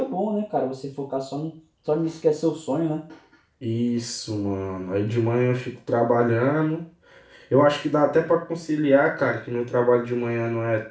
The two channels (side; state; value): both; identical; correlation 1.00